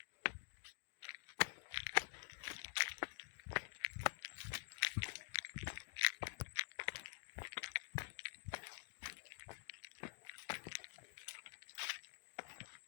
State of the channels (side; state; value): right; silent; digital silence